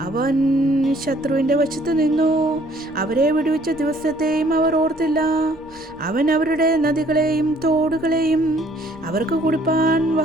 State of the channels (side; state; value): right; noise; rumble, 28 dB below the sound